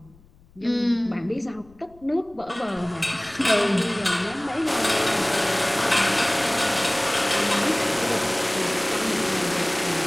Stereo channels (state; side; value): noise; left; rumble, 27 dB below the sound